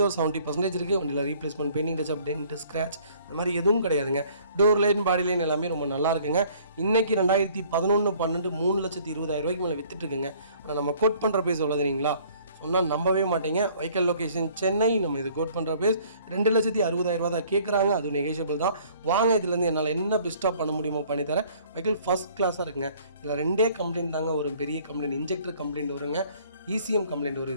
ஒரு 70% இருக்குது. வண்டியில் replacement, painting touch up, dent, scratch அந்த மாதிரி எதுவும் கிடையாதுங்க. டோர் லைன், பாடி லைன் எல்லாமே ரொம்ப நல்லா இருக்குங்க. இன்றைக்கி 2011-12 3,20,000 மேலே வித்துட்டுருக்குங்க. ஆனால் நம்ம கோட் பண்ணுற பேஸ் எவ்வளோ தெரியுங்களா, சொன்னால் நம்பவே மாட்டீங்க. Vehicle location Chennai. நம்ம இது கோட் பண்ணுற பேஸ் 2,60,000 தான் கேட்குறாங்க. அது நெகோஷியபிள் தான். வாங்க, இதுலேருந்து என்னால் என்ன பெஸ்ட்டாக பண்ண முடியுமோ பண்ணித்தரேன். வெஹிக்கல் ஃபஸ்ட் கிளாஸாக இருக்குங்க. இதில் 2 கம்ப்ளைண்ட் தாங்க ஒரு பெரிய கம்ப்ளைண்ட், இன்ஜெக்டர் கம்ப்ளைண்ட் வருங்க, ECM கம்ப்ளைண்ட் வரும்.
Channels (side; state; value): both; inverted; correlation -0.56